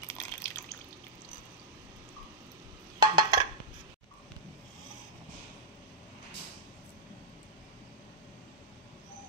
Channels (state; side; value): normal; both; correlation -0.06